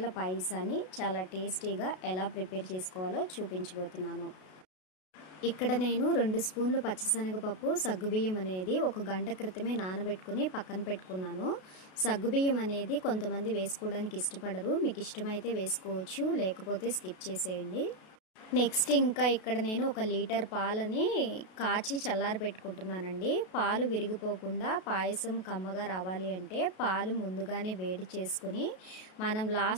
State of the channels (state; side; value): late; right; 32 ms